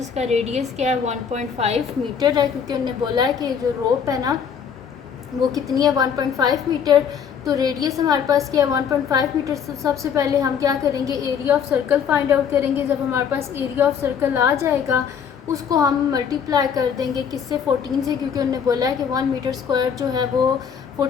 रेडियस क्या है 1.5 मीटर है, क्योंकि उन्होंने बोला है कि जो रोप है ना वो कितनी है 1.5 मीटर। तो रेडियस हमारे पास क्या है 1.5 मीटर। सबसे पहले हम क्या करेंगे, area of circle find out करेंगे। जब हमारे पास एरिया ऑफ सर्कल आ जाएगा उसको हम मल्टीप्लाई कर देंगे किससे, 14 से, क्योंकि उन्होंने बोला है कि 1 मीटर स्क्वायर जो है वो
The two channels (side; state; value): right; quieter; 7.4 dB